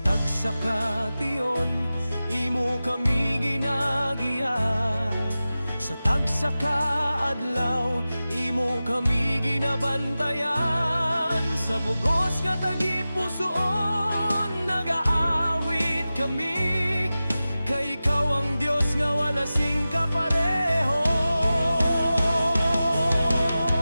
tagsakation imo kami ginagiya, sa tagsakaadlaw imo kami ginabantayan. Sa bugos nga tagipusoon nagaawit kami, kay ikaw ang Diyos nga wala sing kapareho.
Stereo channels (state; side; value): inverted; both; correlation -0.95